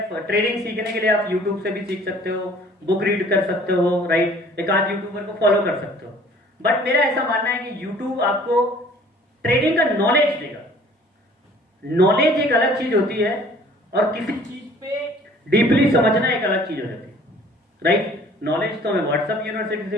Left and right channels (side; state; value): both; normal; correlation 0.53